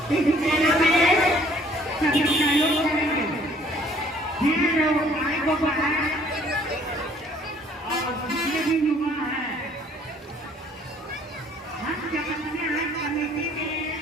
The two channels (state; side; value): normal; both; correlation 0.59